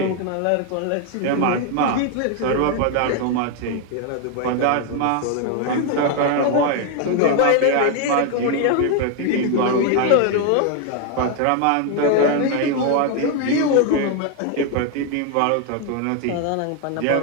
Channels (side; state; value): both; different; correlation 0.01